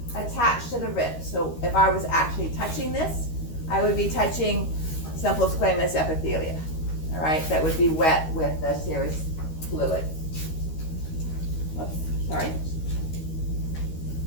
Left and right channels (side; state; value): right; late; 13 ms